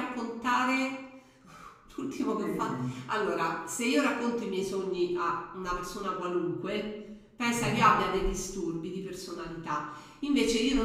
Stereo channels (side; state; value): both; identical; correlation 1.00